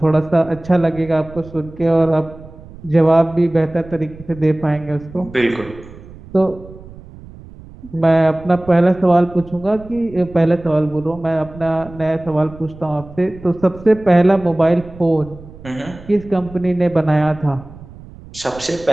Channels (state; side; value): noise; right; rumble, 18 dB below the sound